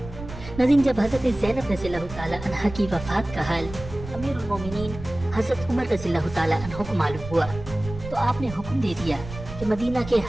नाज़रीन, जब हज़रत ज़ैनब रज़ियल्लाहु ताला अन्हा की वफ़ात का हाल अमीरुल मोमिनीन हज़रत उमर रज़ियल्लाहु ताला अन्हु को मालूम हुआ तो आपने हुक्म दे दिया कि मदीना के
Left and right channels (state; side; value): noise; right; rumble, 12 dB below the sound